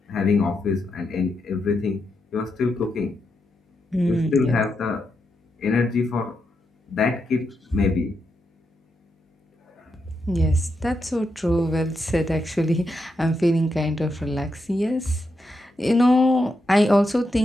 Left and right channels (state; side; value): normal; both; correlation 0.84